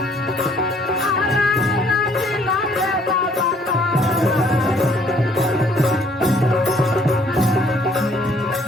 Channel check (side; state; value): both; normal; correlation 0.62